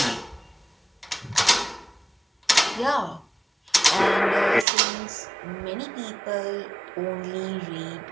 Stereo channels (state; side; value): drops out; left; at 4.7 s